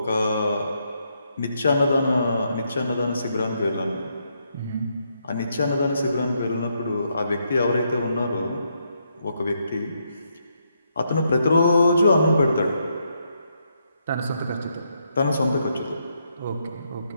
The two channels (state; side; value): inverted; both; correlation -0.78